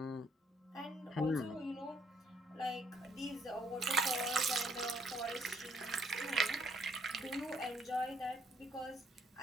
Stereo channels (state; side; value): normal; both; correlation 0.68